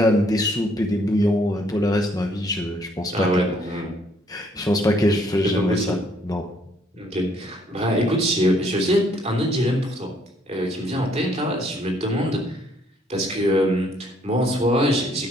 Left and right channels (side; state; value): both; normal; correlation 0.66